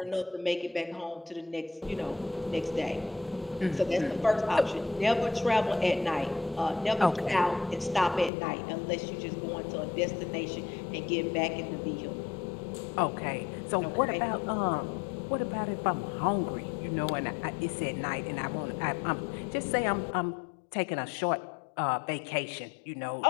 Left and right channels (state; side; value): drops out; right; at 8.3 s